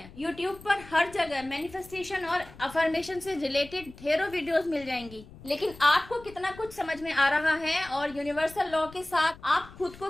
यूट्यूब पर हर जगह मैनिफेस्टेशन और अफर्मेशन से रिलेटेड ढेरों वीडियोस मिल जाएंगी, लेकिन आपको कितना कुछ समझ में आ रहा है और यूनिवर्सल लॉ के साथ आप खुद को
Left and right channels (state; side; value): noise; left; rumble, 19 dB below the sound